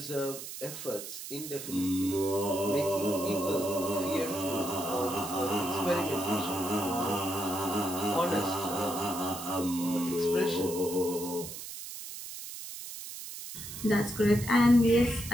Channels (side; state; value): right; noise; hiss, 10 dB below the sound